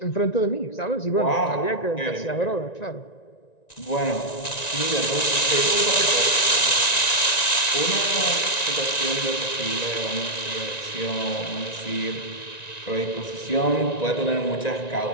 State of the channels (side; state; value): right; late; 1.9 ms